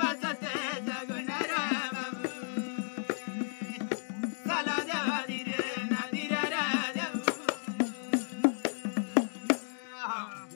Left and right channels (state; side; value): silent; right; digital silence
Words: सत्य जगणार बाबू. चला देवारी रे नदीर रे देव.